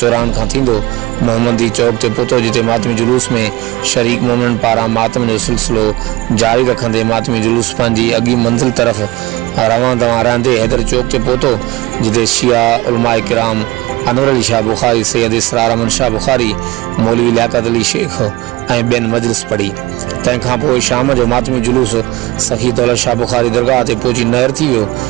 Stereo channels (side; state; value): left; quieter; 20.2 dB